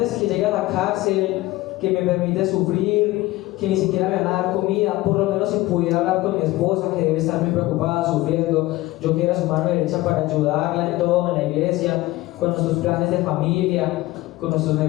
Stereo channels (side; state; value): right; quieter; 18.2 dB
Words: que llegue a la cárcel, que me permite sufrir, que ni siquiera me van a dar comida. Por lo menos si pudiera hablar con mi esposa, que debe estar muy preocupada, sufriendo, yo que era su mano derecha para ayudarla en todo, en la iglesia, con nuestros planes de familia, con nuestros